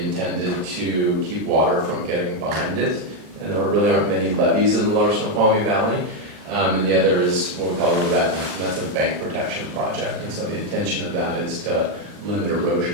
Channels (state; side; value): late; left; 39 ms